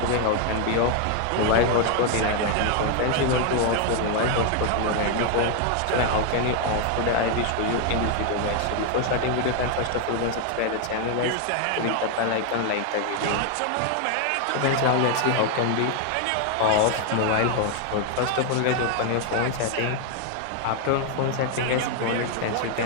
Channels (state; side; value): different; both; correlation 0.00